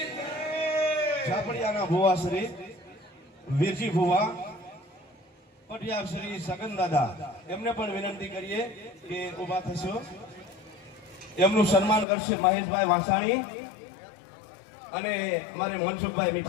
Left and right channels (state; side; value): drops out; right; at 12.1 s